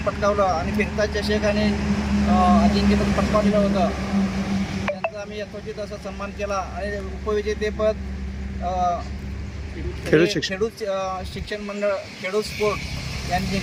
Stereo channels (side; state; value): both; identical; correlation 1.00